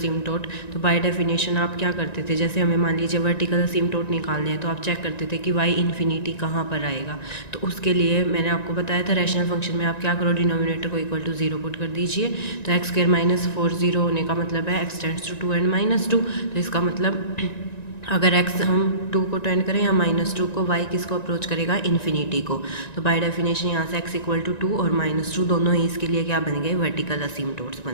तो बाय डेफिनेशन आप क्या करते थे, जैसे हमें मान लीजिए वर्टिकल असिम्प्टोट निकालने हैं तो आप चेक करते थे कि y इन्फिनिटी कहाँ पर आएगा। तो उसके लिए मैंने आपको बताया था रैशनल फंक्शन में आप क्या करो, डिनोमिनेटर को इक्वल टू 0 पुट कर दीजिए। तो एक्स स्क्वायर माइनस 4 0 होने का मतलब है x tends to 2 and minus 2। तो इसका मतलब अगर x हम 2 को टेंड करें या माइनस 2 को, y किसको अप्रोच करेगा, इन्फिनिटी को। तो बाय डेफिनेशन यहाँ से x इक्वल टू 2 और माइनस 2 दोनों ही इसके लिए क्या बन गए, वर्टिकल असिम्प्टोट्स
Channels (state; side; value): late; right; 1.9 ms